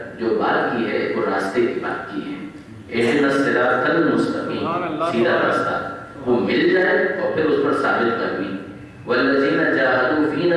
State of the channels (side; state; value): both; identical; correlation 1.00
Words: جو بات کی ہے وہ راستے کی بات کی ہے. اہدنا الصراط المستقیم، سیدھا راستہ وہ مل جائے اور پھر اس پر ثابت قدمی. والذین جاہدوا